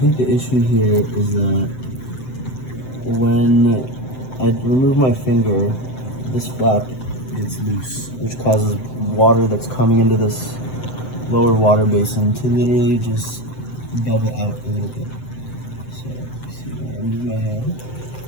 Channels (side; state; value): right; late; 7.8 ms